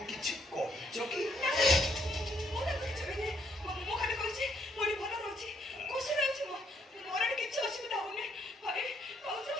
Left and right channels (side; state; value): both; normal; correlation 0.71